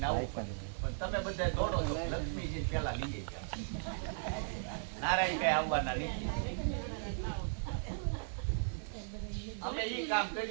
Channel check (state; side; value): silent; left; 53 dB below the other